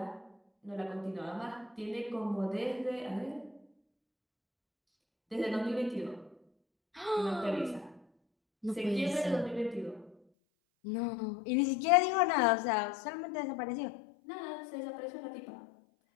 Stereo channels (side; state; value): right; drops out; at 10.2 s